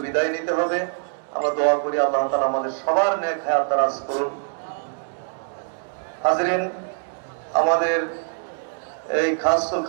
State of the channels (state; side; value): silent; left; digital silence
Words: বিদায় নিতে হবে। আমরা দোয়া করি আল্লাহ তাআলা আমাদের সবার নেক হায়াত দারাজ করুন। হাজরিন, আমাদের এই খাসুল